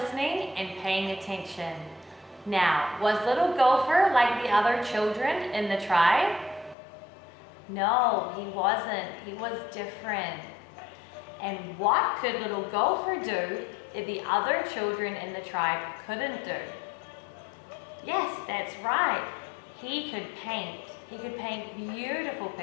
and paying attention. Now, was little Gopher like the other children in the tribe? No, he wasn't. He was different. And what could little Gopher do that the other children in the tribe couldn't do? Yes, that's right. He could paint. He could paint beautiful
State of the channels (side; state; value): right; drops out; at 6.8 s